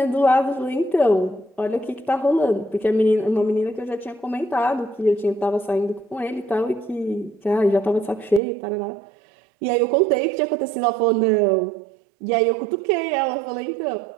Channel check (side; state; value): left; drops out; at 8.4 s